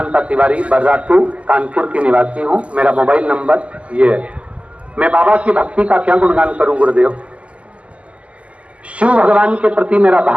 तिवारी, बर्रा 2, कानपुर की निवासी हूँ। मेरा मोबाइल नंबर ये है। मैं बाबा की भक्ति का क्या गुणगान करूं गुरुदेव। शिव भगवान के प्रति मेरा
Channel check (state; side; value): late; left; 0.062 ms